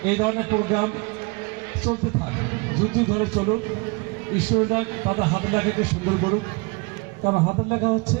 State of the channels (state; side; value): quieter; left; 27.9 dB